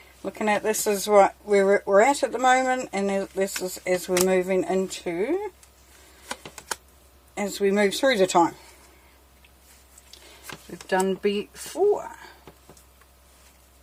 Looking at this is what we're at the moment, and this is as we're moving into, as we move through the time we've done before.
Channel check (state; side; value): identical; both; correlation 1.00